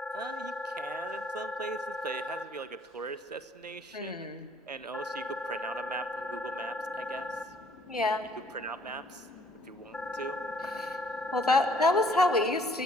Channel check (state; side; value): normal; both; correlation 0.62